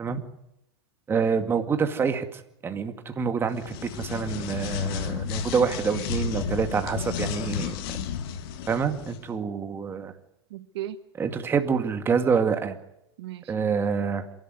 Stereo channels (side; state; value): left; quieter; 3.8 dB